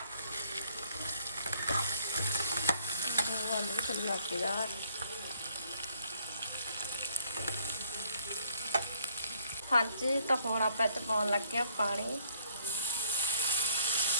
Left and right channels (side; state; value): both; inverted; correlation -0.63